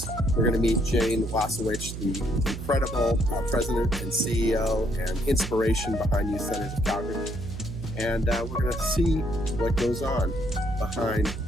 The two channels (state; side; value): noise; right; hum, 8 dB below the sound